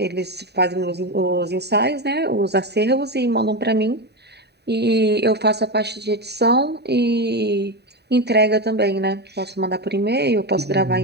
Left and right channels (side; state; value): left; late; 0.48 ms